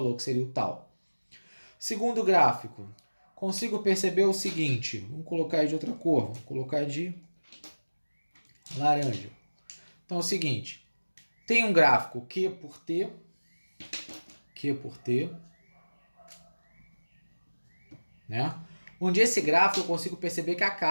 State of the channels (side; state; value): both; inverted; correlation -1.00